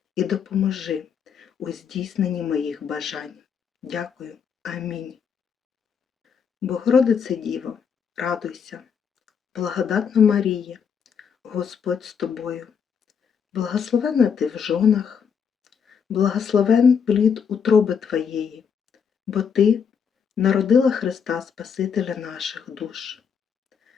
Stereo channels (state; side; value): quieter; right; 6.9 dB